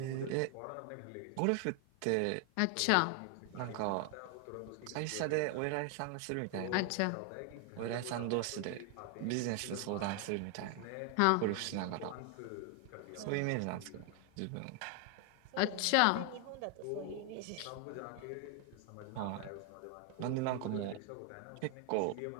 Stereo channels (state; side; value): different; both; correlation 0.00